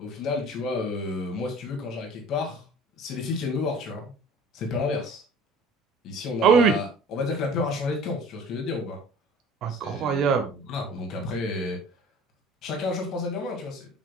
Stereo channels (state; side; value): normal; both; correlation 0.46